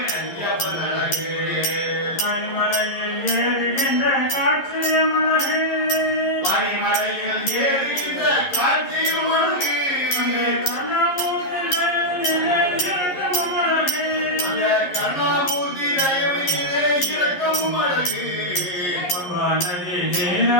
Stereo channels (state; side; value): late; right; 11 ms